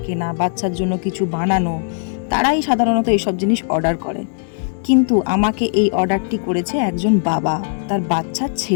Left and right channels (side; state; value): right; silent; digital silence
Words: কেনা, বাচ্চার জন্য কিছু বানানো, তারাই সাধারণত এইসব জিনিস অর্ডার করে। কিন্তু আমাকে এই অর্ডারটি করেছে একজন বাবা তার বাচ্চার